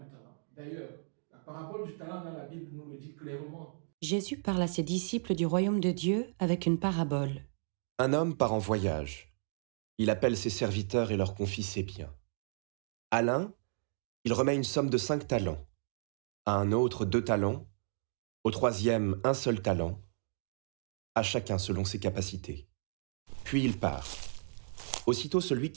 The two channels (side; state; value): left; silent; digital silence